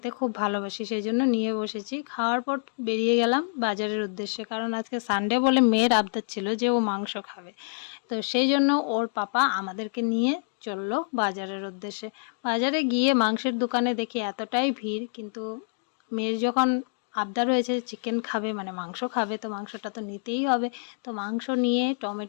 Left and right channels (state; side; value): silent; right; digital silence